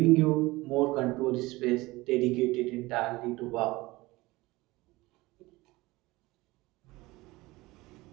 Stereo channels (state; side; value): quieter; left; 20.7 dB